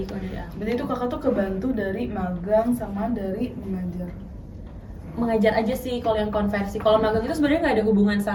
kalau dari aku. Berarti itu kakak tuh kebantu dari magang sama dari mengajar. Mengajar aja sih kalau yang konversi. Kalau magang itu sebenarnya nggak ada hubungan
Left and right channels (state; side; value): identical; both; correlation 1.00